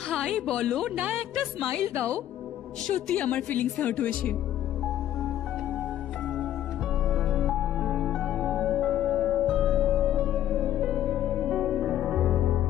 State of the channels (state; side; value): quieter; right; 11.9 dB